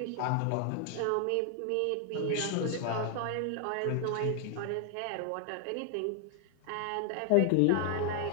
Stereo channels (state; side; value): different; both; correlation 0.00